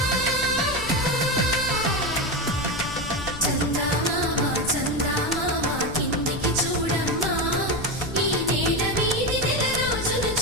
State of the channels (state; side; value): noise; left; rumble, 11 dB below the sound